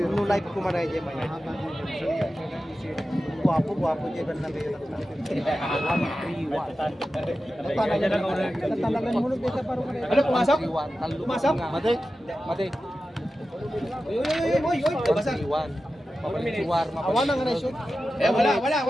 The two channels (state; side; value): normal; both; correlation 0.93